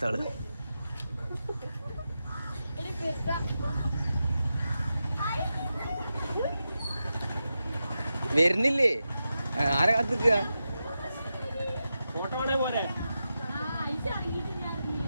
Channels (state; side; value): inverted; both; correlation -0.90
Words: വരുന്നില്ലേ? ആരെ കാത്തിക്ക?